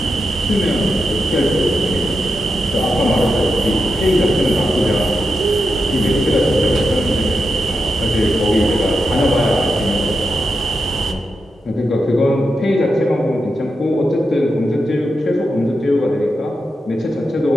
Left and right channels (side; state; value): both; normal; correlation 0.87